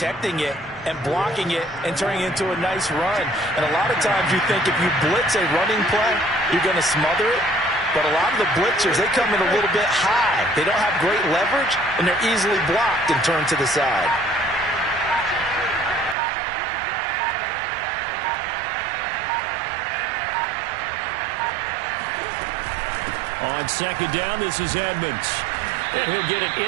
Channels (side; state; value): left; drops out; at 16.2 s